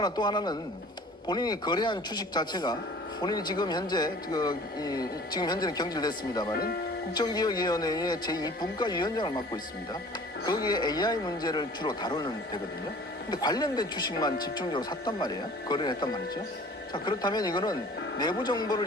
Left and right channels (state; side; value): normal; both; correlation 0.47